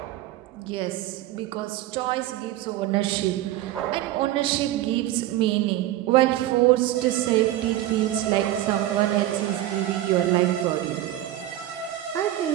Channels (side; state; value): left; quieter; 14.2 dB